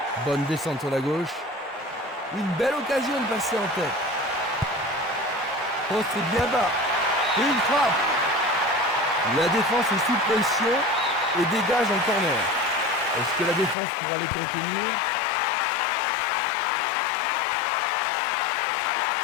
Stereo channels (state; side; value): drops out; right; at 13.8 s